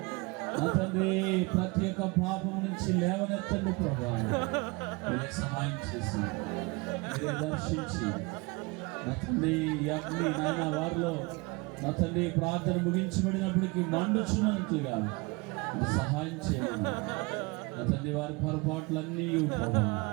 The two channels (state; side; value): quieter; left; 26.7 dB